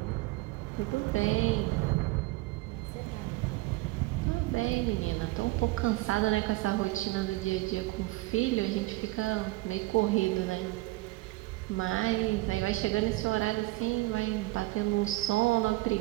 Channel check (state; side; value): quieter; left; 20.1 dB